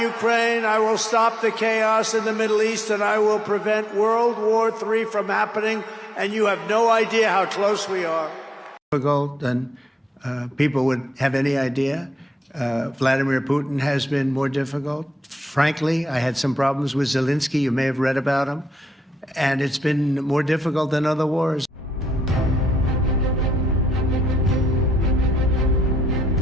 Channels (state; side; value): normal; both; correlation 0.82